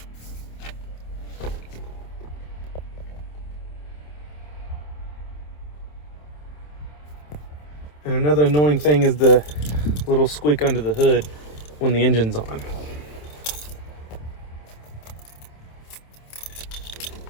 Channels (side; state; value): right; late; 27 ms